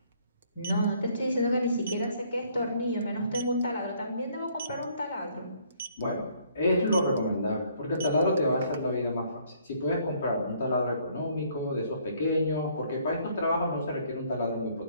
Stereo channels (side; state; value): both; inverted; correlation -0.63